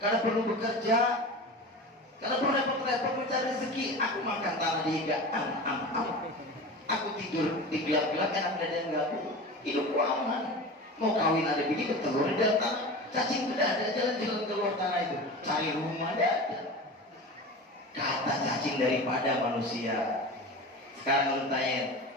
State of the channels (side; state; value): both; normal; correlation 0.31